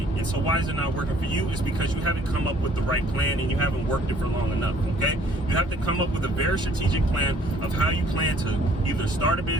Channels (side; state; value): both; normal; correlation 0.58